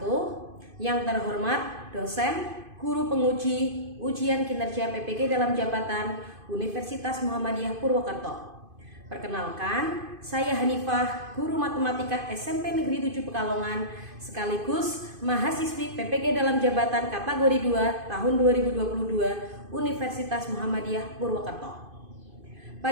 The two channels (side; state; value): left; late; 2.5 ms